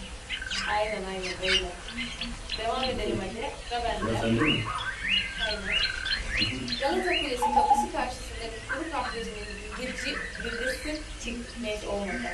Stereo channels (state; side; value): identical; both; correlation 1.00